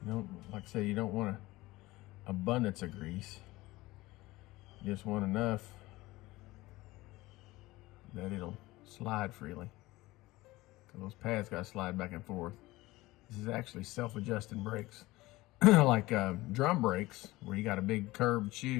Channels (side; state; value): right; quieter; 19.3 dB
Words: You don't, like I say, you don't want an abundance of grease. You just want enough that it'll slide freely. Because those pads got to slide back and forth. This is actually self-adjusting brakes. Like drum brakes, where you got a big curved